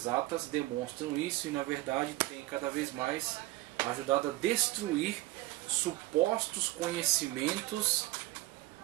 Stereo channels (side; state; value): left; quieter; 18.5 dB